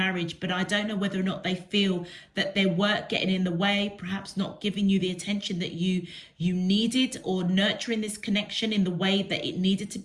but I don't know whether or not they feel that their work getting in the way, perhaps not giving you the attention that you needed, or nurturing this connection in the way that it needed to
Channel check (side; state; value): both; identical; correlation 1.00